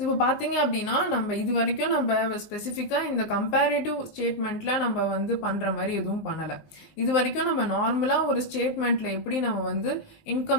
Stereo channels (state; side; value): late; right; 19 ms